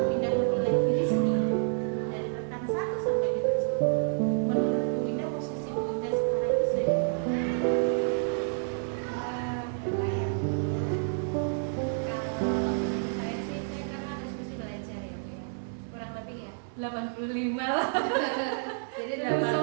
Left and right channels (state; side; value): silent; left; digital silence